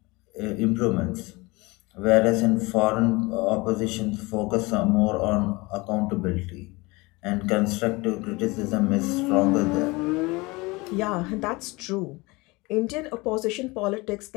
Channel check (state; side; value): quieter; right; 23.9 dB